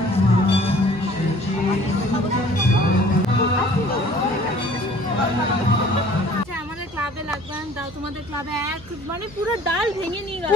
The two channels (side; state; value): right; noise; hum, 21 dB below the sound